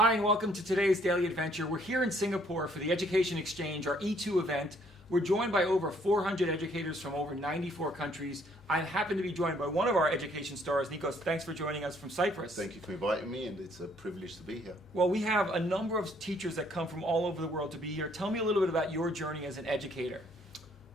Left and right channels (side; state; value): both; normal; correlation 0.65